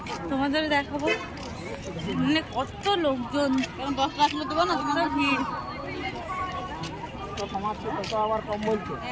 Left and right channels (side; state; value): both; identical; correlation 1.00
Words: তোমাদের দেখাবো। মানে কত লোকজন, কত ভিড়।